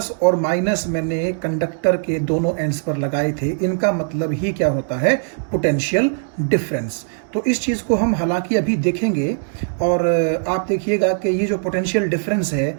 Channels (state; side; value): silent; left; 65 dB below the other